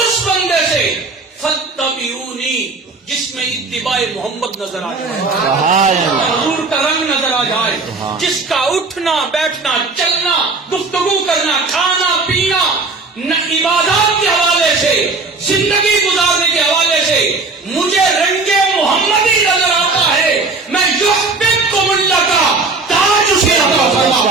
بندے سے فاتبعونی جس میں اتباع محمد نظر آ جائے، حضور کا رنگ نظر آ جائے، جس کا اٹھنا بیٹھنا چلنا گفتگو کرنا کھانا پینا عبادات کے حوالے سے زندگی گزارنے کے حوالے سے مجھے رنگے محمدی نظر آتا ہے. میں یحببکم اللہ کا تاج اسے عطا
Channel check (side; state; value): left; quieter; 3.8 dB